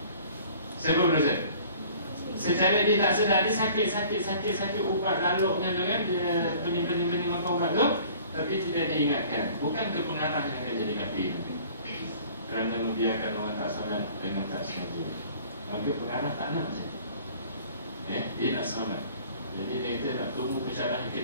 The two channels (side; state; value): both; inverted; correlation -0.50